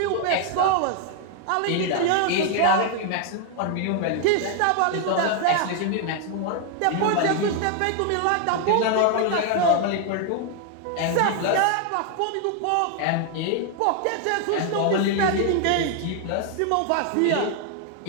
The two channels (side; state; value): both; different; correlation 0.00